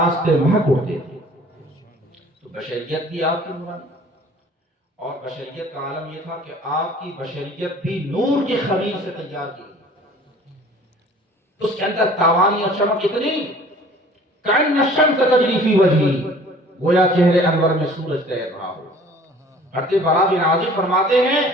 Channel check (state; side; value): normal; both; correlation 0.50